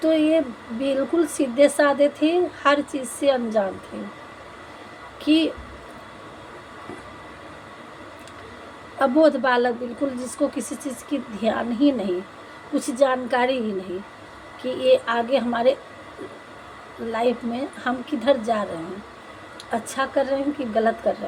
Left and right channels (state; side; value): identical; both; correlation 1.00